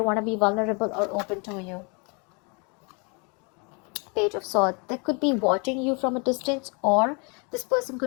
want to be vulnerable or open to you. Page of Swords. They could be watching you from a distance, or this person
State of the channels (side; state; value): right; quieter; 32.9 dB